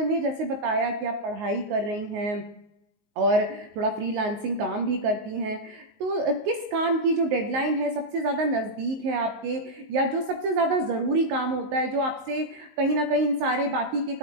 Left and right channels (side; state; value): left; late; 19 ms